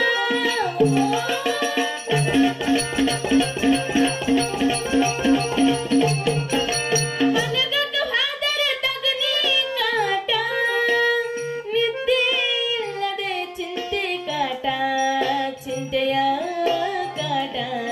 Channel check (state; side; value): identical; both; correlation 1.00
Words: ಮಲಗಕ್ಕ ಹಾದರ ತಗನಿ ಕಾಟ ನಿದ್ದೆ ಇಲ್ಲದೆ ಚಿಂತೆ ಕಾಟ ಚಿಂತೆಯ ಕಾಟ